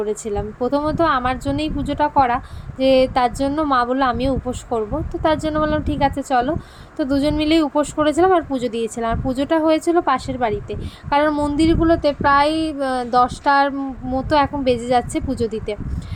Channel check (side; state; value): both; identical; correlation 1.00